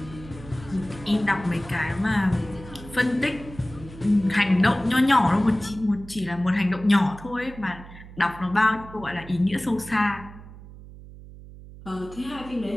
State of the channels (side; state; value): right; noise; hum, 17 dB below the sound